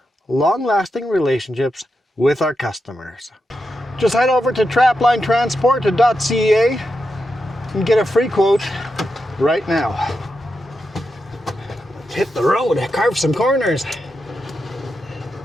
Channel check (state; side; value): normal; both; correlation 0.87